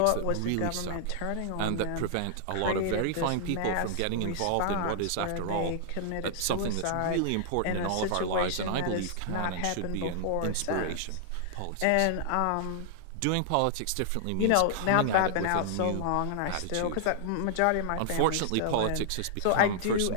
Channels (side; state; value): both; different; correlation -0.01